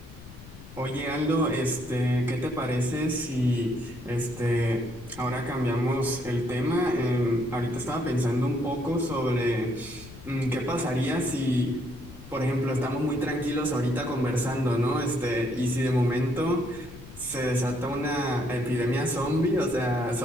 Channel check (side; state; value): left; noise; rumble, 17 dB below the sound